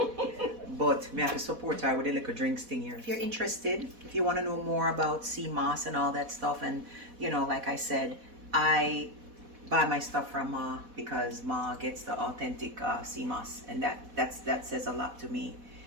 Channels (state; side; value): late; left; 4.1 ms